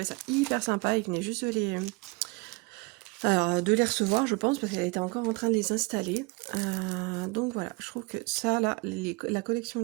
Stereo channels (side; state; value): left; quieter; 26.9 dB